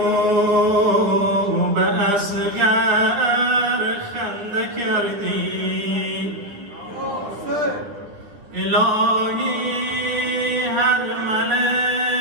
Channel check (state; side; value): late; left; 10 ms